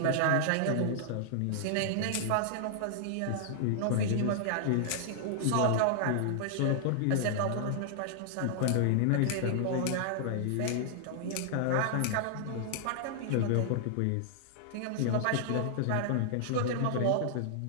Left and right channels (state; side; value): different; both; correlation -0.01